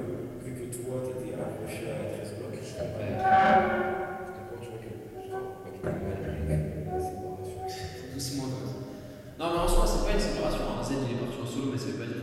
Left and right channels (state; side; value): identical; both; correlation 1.00